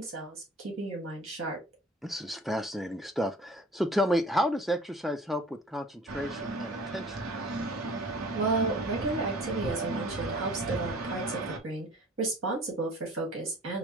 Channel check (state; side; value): normal; both; correlation 0.47